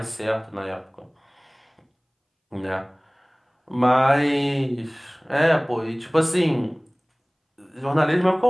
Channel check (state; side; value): identical; both; correlation 1.00